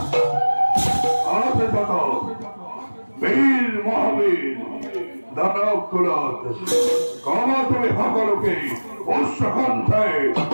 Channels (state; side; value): inverted; both; correlation -1.00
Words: বীর মহাবীর দানব কুলত কমা তুমি সকলকে উৎসকণ্ঠায়